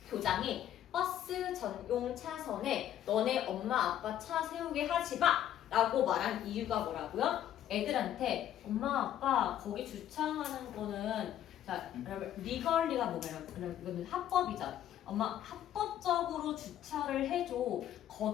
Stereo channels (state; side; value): quieter; right; 11.3 dB